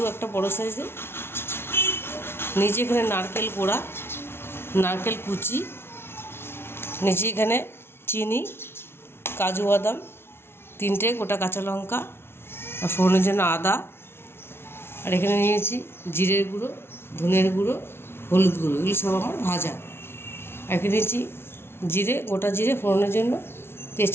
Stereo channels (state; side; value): late; right; 0.12 ms